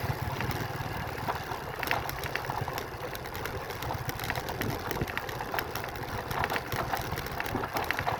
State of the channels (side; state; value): both; identical; correlation 1.00